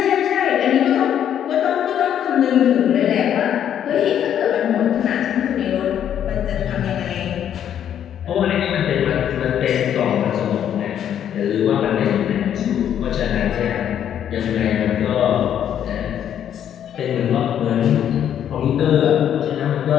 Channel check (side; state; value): right; quieter; 9.7 dB